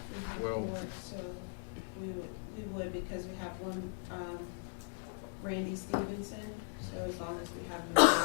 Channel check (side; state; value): right; silent; digital silence